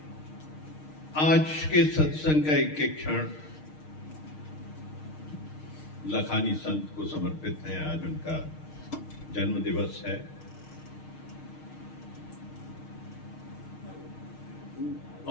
आज के सत्संग का एक एक क्षण लखानी संत को समर्पित है। आज उनका जन्म दिवस है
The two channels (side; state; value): right; late; 6.5 ms